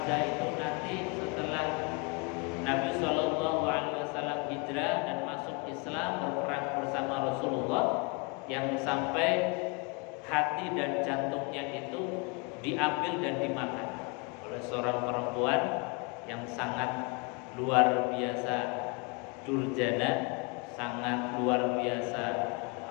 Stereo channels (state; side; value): quieter; right; 31.5 dB